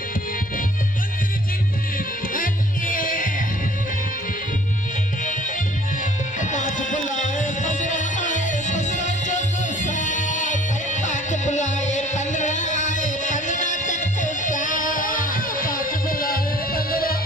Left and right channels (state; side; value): normal; both; correlation 0.54